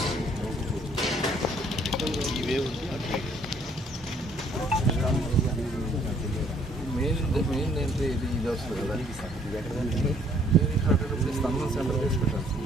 మెయిన్ ఏంటి ఇది వస్తుంది కదా స్తంభం సెంటర్ తీసుకుంటాను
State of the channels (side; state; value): both; normal; correlation 0.62